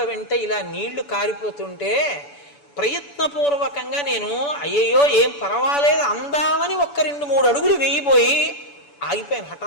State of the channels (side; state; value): right; late; 7.0 ms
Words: వెంట ఇలా నీళ్లు కారిపోతుంటే ప్రయత్నపూర్వకంగా నేను అయ్యయ్యో ఏం పర్వాలేదు అందామని 1-2-3 అడుగులు వేయిపోయి ఆగిపోయాను